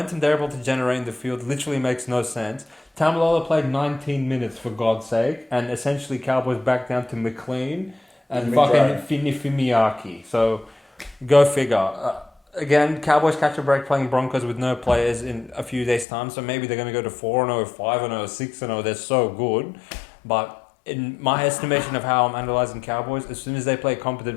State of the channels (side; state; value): right; drops out; at 16.1 s